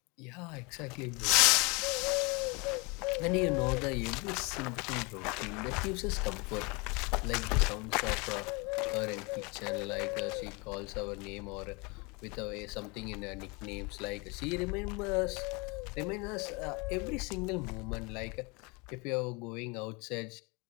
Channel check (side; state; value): right; quieter; 28.5 dB